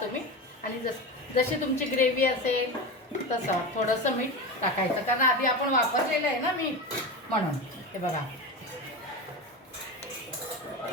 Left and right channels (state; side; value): normal; both; correlation 0.23